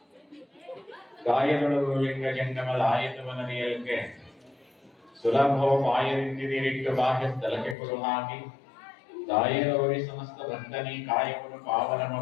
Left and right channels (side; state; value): right; drops out; at 7.8 s